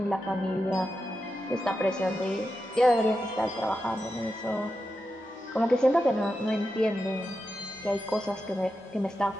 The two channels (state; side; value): normal; both; correlation 0.89